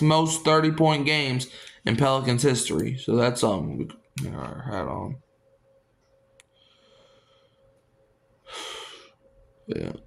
30-point games in Pelicans history. So that's we got our hat on. Yeah.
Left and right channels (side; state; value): both; identical; correlation 1.00